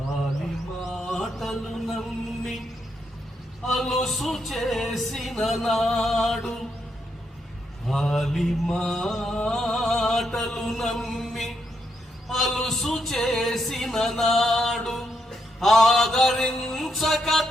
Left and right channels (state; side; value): normal; both; correlation 0.80